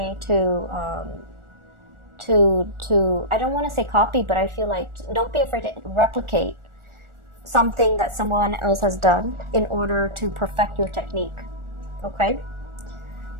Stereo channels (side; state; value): left; late; 1.4 ms